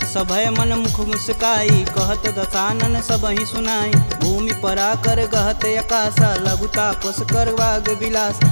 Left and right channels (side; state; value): both; inverted; correlation -1.00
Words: सभय मन मुख मुस्काई, कहत दसानन सबहि सुनाई, भूमि परा कर गहत अकासा, लघुता पस कर वाग विलास,